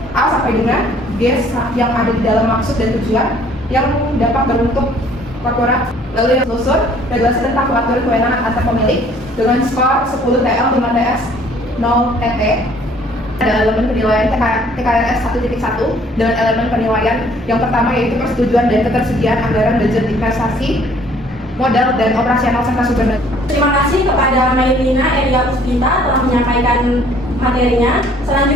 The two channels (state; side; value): normal; both; correlation 0.58